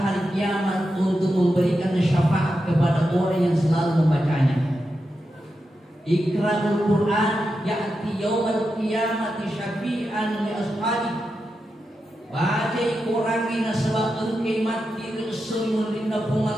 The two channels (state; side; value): normal; both; correlation 0.88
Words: hari kiamat untuk memberikan syafaat kepada orang yang selalu membacanya. Iqra'ul Quran ya'ti yawmal qiyamati syafi'an li ashabi. Baca Quran ini sebab engkau mati resul linda